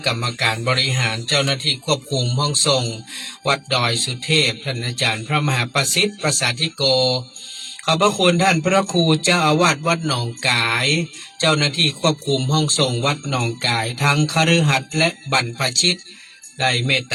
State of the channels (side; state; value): both; identical; correlation 1.00